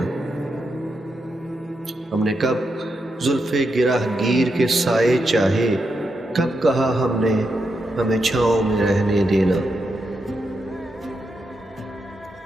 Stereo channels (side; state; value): both; normal; correlation 0.84